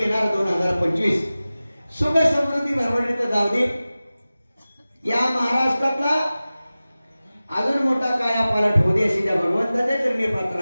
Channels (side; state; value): both; inverted; correlation -0.97